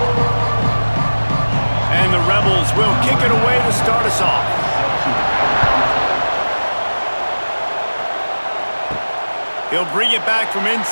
And the Rebels will kick it away to start us off. He'll bring it back from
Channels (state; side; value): inverted; both; correlation -1.00